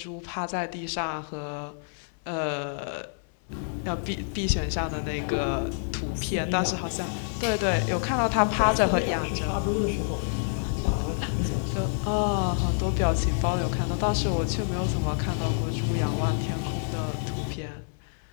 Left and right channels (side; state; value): right; silent; 60 dB below the other